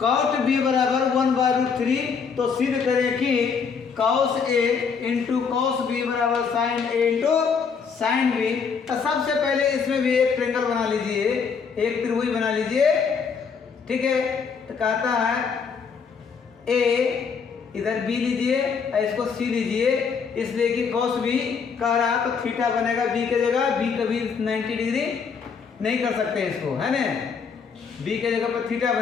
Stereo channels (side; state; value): right; quieter; 5.9 dB